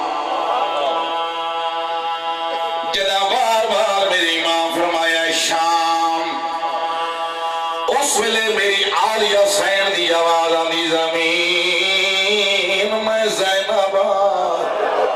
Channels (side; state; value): both; identical; correlation 1.00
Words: جدا بار بار میرے امام فرمایا شام اس ویلے میری عالیہ سین دی آواز آندی زمین میں زینب